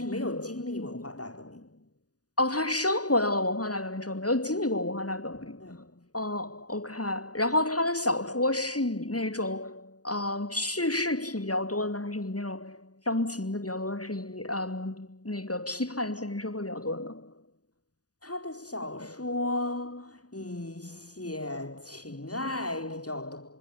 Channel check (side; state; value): right; late; 0.68 ms